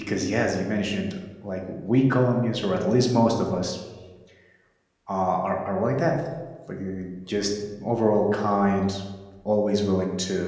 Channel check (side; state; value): both; identical; correlation 1.00